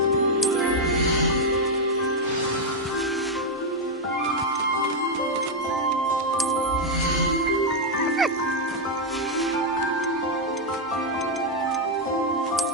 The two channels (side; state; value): both; normal; correlation 0.00